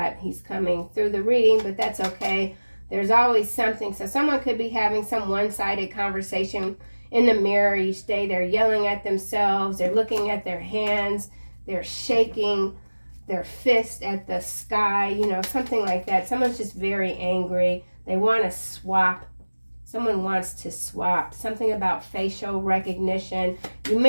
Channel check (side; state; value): both; inverted; correlation -1.00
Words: He's coming through the reading, but that's okay. There's always something. So someone could be having some one-sided conversation in the mirror each day. They're yelling at themselves. They're looking at their hands. They're shaking their fist at the sky, you know, something like that. Someone's just very angry. They want to swap. Someone wants to swap. Something about facial recognition. You